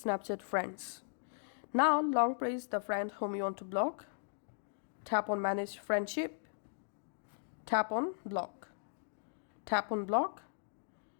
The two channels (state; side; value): silent; right; digital silence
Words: friends. Now long press the friend whom you want to block, tap on Manage Friendship, tap on Block,